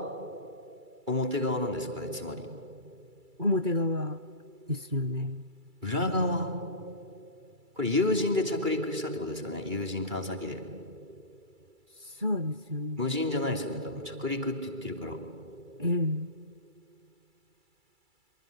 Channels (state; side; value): late; left; 2.3 ms